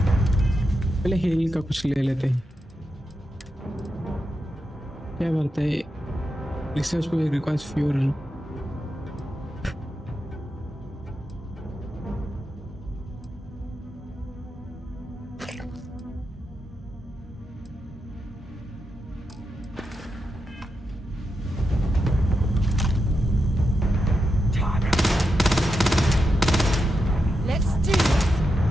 पहले हेल का कुछ ले लेते हैं। क्या बात है, रिसर्च को रिक्वायर्स फ्यूल।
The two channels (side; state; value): both; normal; correlation 0.87